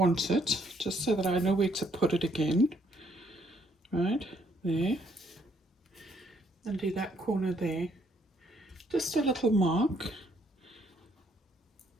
it, just so that I know where to put it again. Right, there. And do that corner there, just a little mark.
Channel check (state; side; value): normal; both; correlation 0.69